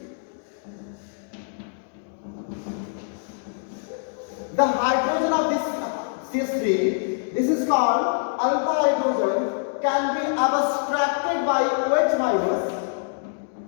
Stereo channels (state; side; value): silent; right; digital silence